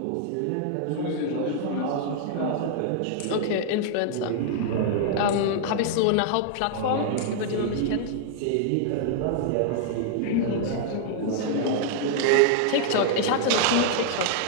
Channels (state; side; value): different; both; correlation -0.01